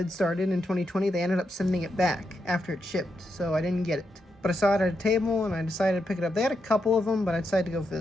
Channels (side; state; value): both; normal; correlation 0.84